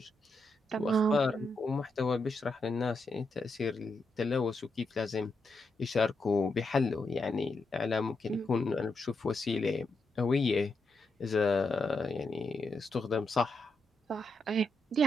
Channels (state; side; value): normal; both; correlation 0.83